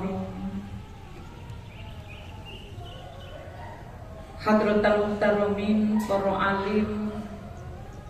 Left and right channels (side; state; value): both; identical; correlation 1.00